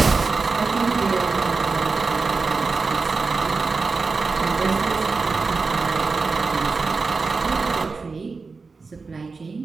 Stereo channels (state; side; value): quieter; left; 4.3 dB